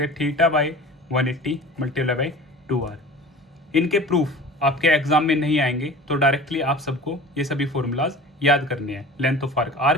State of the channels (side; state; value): both; normal; correlation 0.39